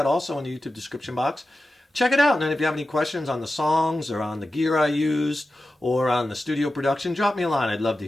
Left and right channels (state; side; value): normal; both; correlation 0.93